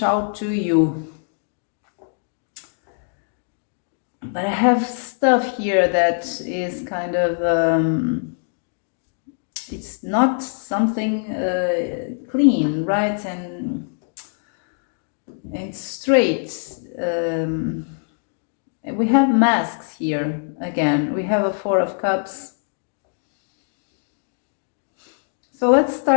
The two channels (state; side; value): silent; right; digital silence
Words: out to you. But I have stuff here that is kind of, it's not something clean, right? And straight. We have masks here again. We have a Four of Cups. So let's